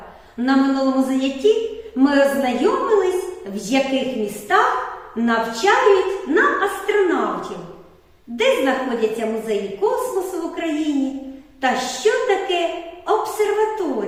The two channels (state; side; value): identical; both; correlation 1.00